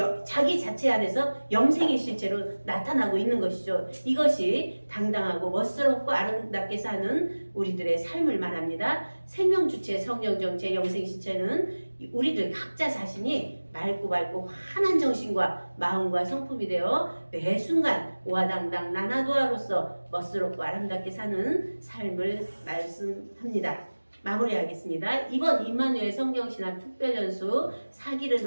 자기 자체 안에서 영생의 실체로 나타나고 있는 것이죠. 이것이 당당하고 멋스럽고 아름답게 사는 우리들의 삶을 말합니다. 생명주체, 성령정체, 영생실체는 우리들 각자 자신이 맑고 환한 정신과 마음과 성품이 되어 매 순간 오화당당 나나도아로서 멋스럽고 아름답게 사는 삶을 말씀합니다. 마무리하겠습니다. 이번 임마누엘 성경신학 특별연수 4기를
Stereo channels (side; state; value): both; inverted; correlation -1.00